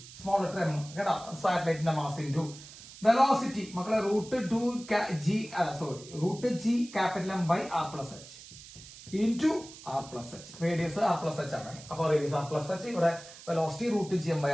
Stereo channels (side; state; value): right; noise; hiss, 17 dB below the sound